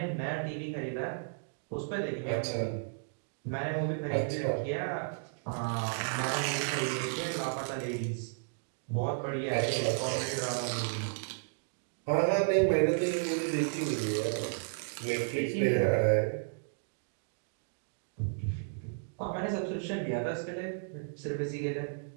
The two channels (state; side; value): silent; left; digital silence